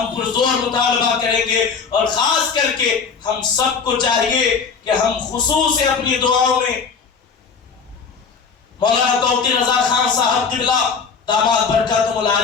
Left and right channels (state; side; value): quieter; right; 5.6 dB